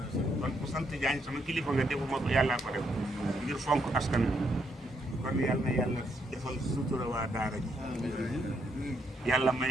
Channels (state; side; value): normal; both; correlation 0.75